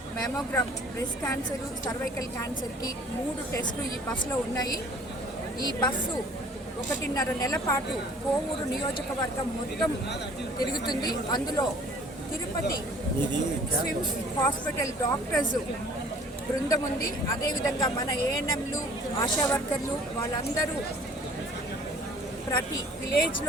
మెమోగ్రామ్, బ్రెస్ట్ క్యాన్సరు, సర్వైకల్ క్యాన్సర్కి 3 టెస్టులు ఈ బస్సులో ఉన్నాయి. ఈ బస్సు 1.5 నెలల పాటు కోవూరు నియోజకవర్గం మొత్తం తిరుగుతుంది. అందులో తిరుపతి స్విమ్స్ హాస్పిటల్ డాక్టర్స్ బృందం ఉంది. అదేవిధంగా మన ఏఎన్ఎంలు, ఆశా వర్కర్లు వాళ్ళందరూ ప్రతి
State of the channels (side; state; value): both; normal; correlation 0.52